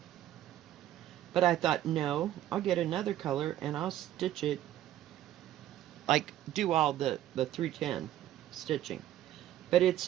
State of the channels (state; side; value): quieter; left; 12.8 dB